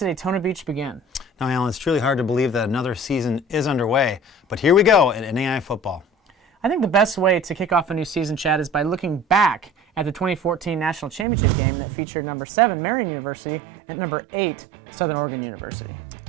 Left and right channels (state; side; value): drops out; left; at 11.2 s